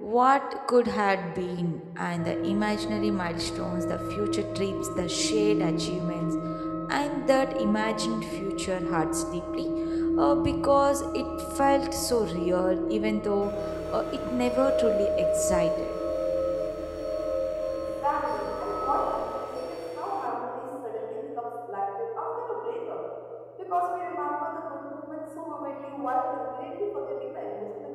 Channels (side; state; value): both; identical; correlation 1.00